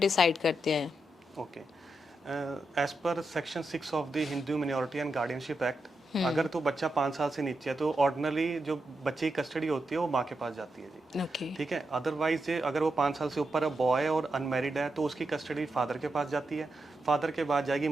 करते हैं? Okay, as per section 6 of the Hindu minority and guardianship act, अगर तो बच्चा 5 साल से नीचे है तो ऑर्डिनरी जो बच्चे की कस्टडी होती है वो माँ के पास जाती है जी। ओके। ठीक है, अदरवाइज अगर वो 5 साल से ऊपर है, बॉय है और अनमेरिड है, तो उसकी कस्टडी फादर के पास जाती है, फादर के बाद जाएगी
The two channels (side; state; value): both; normal; correlation 0.86